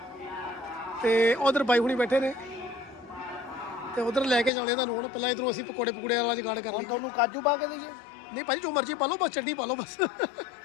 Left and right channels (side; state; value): right; drops out; at 4.5 s